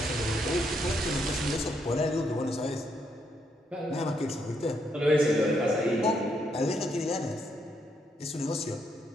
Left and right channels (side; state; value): both; normal; correlation 0.76